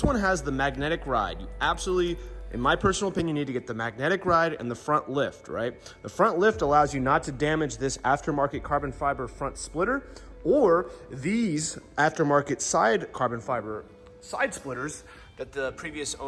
one has the magnetic ride. You absolutely, in my personal opinion, you need to get the magnetic ride and the front lift, right? The front lift allows you not to damage this aftermarket carbon fiber front splitter or these aftermarket side carbon fiber side splitters that the previous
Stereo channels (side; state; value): both; identical; correlation 1.00